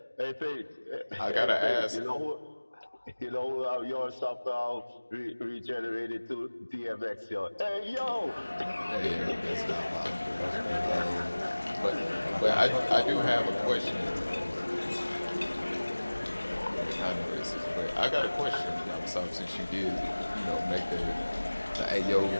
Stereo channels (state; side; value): inverted; both; correlation -1.00